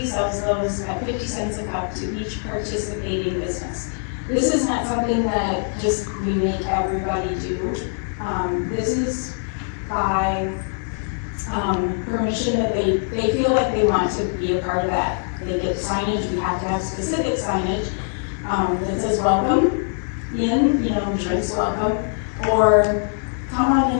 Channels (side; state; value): right; silent; 55 dB below the other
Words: sells those at 50 cents a cup to each participating business. This is not something that just we make everybody do. This is by permission that they feel like they want to be a part of that. They get signage, we have to have specific signage that says welcome in, drinks welcome, or come on